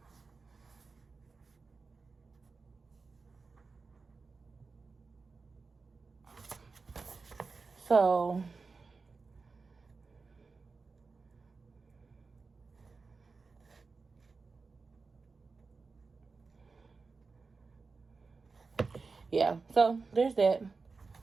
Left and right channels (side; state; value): left; quieter; 4.3 dB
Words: So yeah, so there's that.